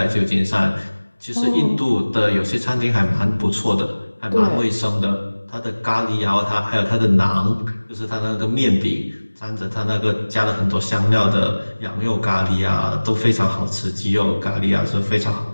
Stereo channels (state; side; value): inverted; both; correlation -1.00